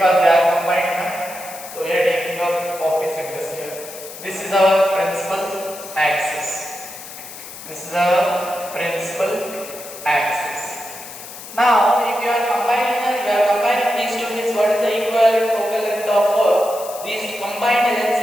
they are combined. So we are taking our optic centers here. This is our principal axis. This is our principal axis. Now, if you are combining these two means what is the equivalent focal length of these combined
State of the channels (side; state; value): left; noise; hiss, 13 dB below the sound